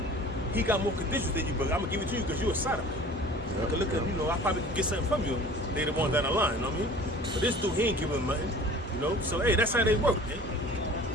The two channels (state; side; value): normal; both; correlation 0.44